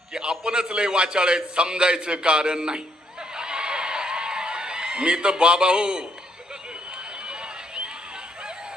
की आपणच लय वाचाळ आहेत समजायचं कारण नाही. मी तर बाबा हो.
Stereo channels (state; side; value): normal; both; correlation 0.72